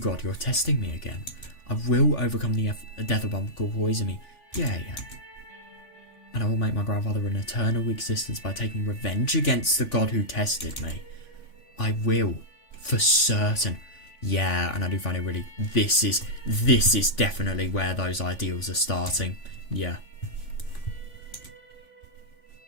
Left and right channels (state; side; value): late; right; 3.5 ms